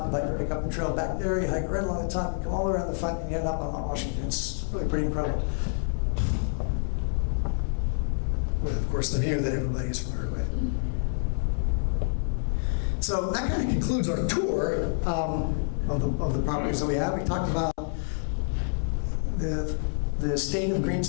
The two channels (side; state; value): right; silent; 60 dB below the other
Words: about, you pick up the trail back there, you hike right along the top, you come all the way around the front, and you end up on Mount Washington. It's really pretty incredible. With, of course, the view that everybody is familiar with. So that kind of concludes our tour of the properties that we have. We talked about the state of green